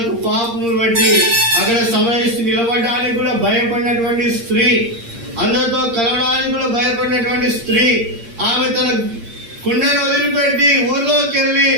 పాపములు బట్టి అక్కడ సమరయ స్త్రీ నిలబడడానికి కూడా భయపడినటువంటి స్త్రీ, అందరితో కలవడానికి కూడా భయపడినటువంటి స్త్రీ, ఆమె తన కుండను వదిలిపెట్టి ఊర్లోకి వెళ్ళి,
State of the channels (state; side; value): late; left; 8.7 ms